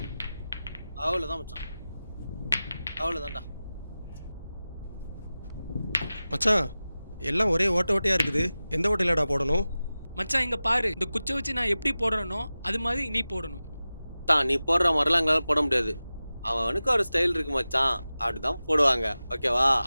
அவ்வளவுதான் மச்சான். அவ்வளவுதான்டா. மச்சான் எல்லாம் ஒரே ஓட்ட ஓட்டையா இருக்குது, எந்த ஓட்டையிலடா போடணும்? மச்சான் இங்க பாரு, இந்த குச்சை வச்சு நான் எப்படி போடுறேனோ அது மாதிரி நீ போடணும். நீ போடுற மாதிரிலாம் எங்களால போட முடியாது. அவனுக்கு ஒரு ஸ்டைல் இருக்கு மச்சான், அப்படிதான் போடுவாங்க. ஓகேவா?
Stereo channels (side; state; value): both; inverted; correlation -0.96